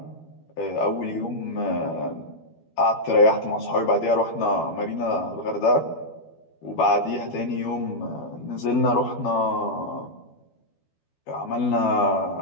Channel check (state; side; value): late; right; 12 ms